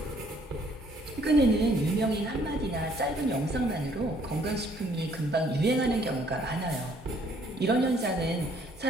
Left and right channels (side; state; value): both; normal; correlation 0.63